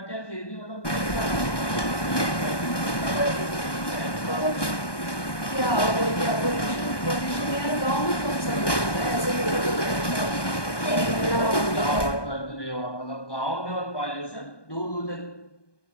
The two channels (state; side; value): late; right; 1.2 ms